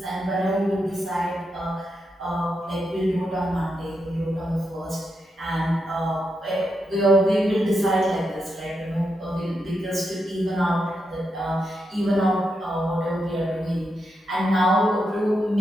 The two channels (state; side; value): normal; both; correlation 0.84